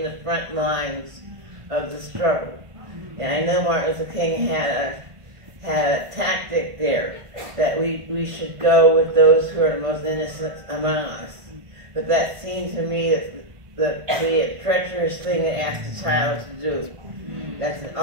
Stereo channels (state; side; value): late; left; 1.5 ms